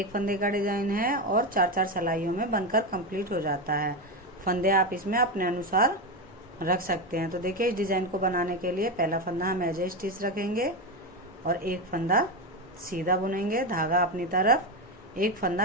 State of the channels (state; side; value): normal; both; correlation 0.14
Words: फंदे का डिजाइन है और चार चार सिलाइयों में बनकर कंप्लीट हो जाता है। फंदे आप इसमें अपने अनुसार रख सकते हैं। तो देखिए, इस डिजाइन को बनाने के लिए पहला फंदा हम एज ए स्टिच रखेंगे और एक फंदा सीधा बुनेंगे, धागा अपनी तरफ, एक